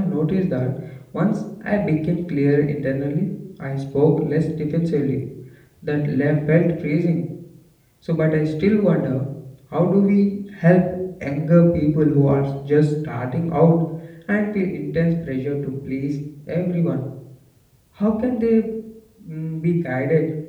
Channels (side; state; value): both; identical; correlation 1.00